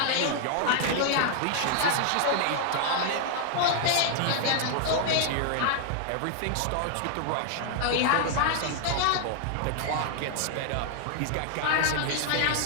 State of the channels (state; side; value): different; both; correlation 0.00